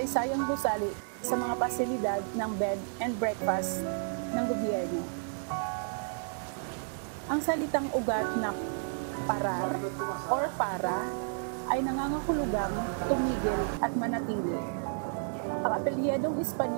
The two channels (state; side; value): silent; left; digital silence